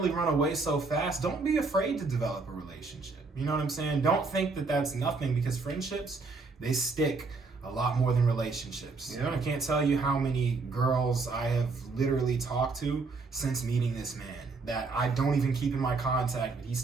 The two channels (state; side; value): quieter; left; 4.1 dB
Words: run away so fast. Don't be afraid to develop a relationship. You know what I'm saying? Don't think that that's nothing, because friendships, they stick a lot more than relationships. Yeah. I can't tell you how many girls I have literally talked to since meeting this man that I don't even keep in my contact, but he